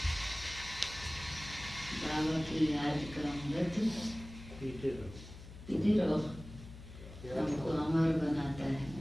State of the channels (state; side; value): noise; left; hum, 15 dB below the sound